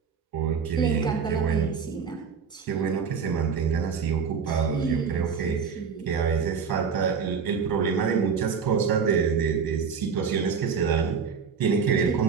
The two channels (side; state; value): left; quieter; 6.1 dB